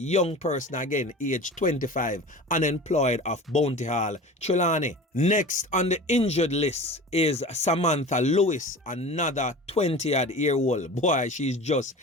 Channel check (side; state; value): both; normal; correlation 0.36